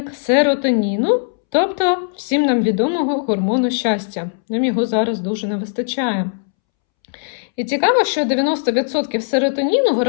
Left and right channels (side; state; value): right; silent; 67 dB below the other